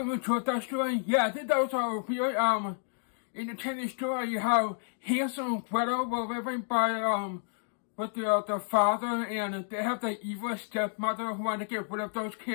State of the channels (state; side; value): silent; right; 57 dB below the other